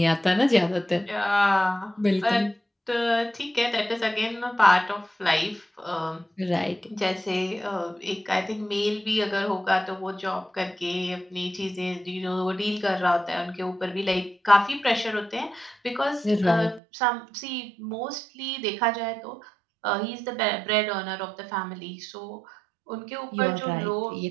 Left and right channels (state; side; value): drops out; left; at 16.8 s